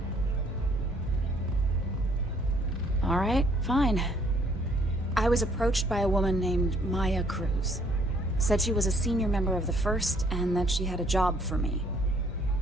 All right, fine. I was approached by a woman named Maya Cruz. Said she was a senior member of the First and that she had a job for me.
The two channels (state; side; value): normal; both; correlation 0.64